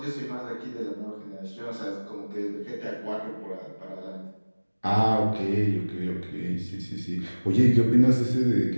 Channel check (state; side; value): inverted; both; correlation -1.00